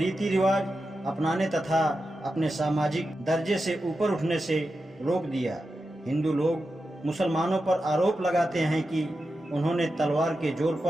रिवाज अपनाने तथा अपने सामाजिक दर्जे से ऊपर उठने से रोक दिया। हिंदू लोग मुसलमानों पर आरोप लगाते हैं कि उन्होंने तलवार के जोर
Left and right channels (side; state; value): both; normal; correlation 0.90